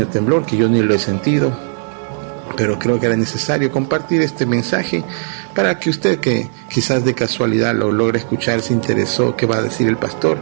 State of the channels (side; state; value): left; silent; 68 dB below the other